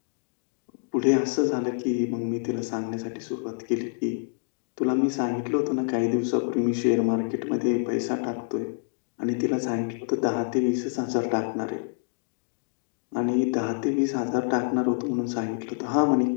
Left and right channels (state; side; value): silent; right; digital silence